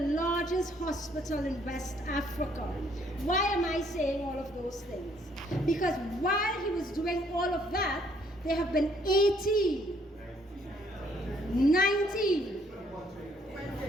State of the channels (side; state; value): both; normal; correlation 0.66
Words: hospital in West Africa. Why am I saying all of those things? Because while he was doing all of that, there have been 18, 19,